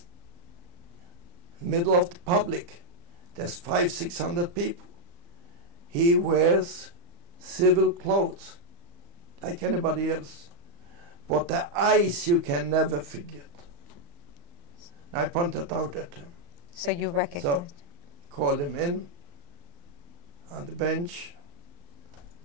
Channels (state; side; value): late; left; 35 ms